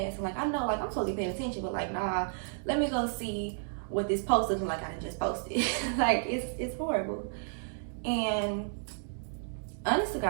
and like I know like I'm totally paying attention, but like nah, let me go see what this post looking like I just posted. Like it's horrible. And honest to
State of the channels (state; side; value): silent; left; digital silence